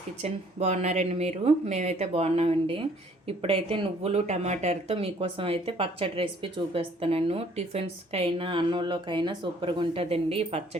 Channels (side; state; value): both; normal; correlation 0.60